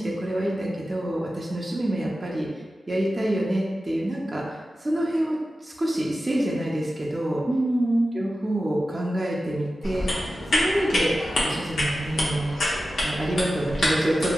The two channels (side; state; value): both; normal; correlation 0.93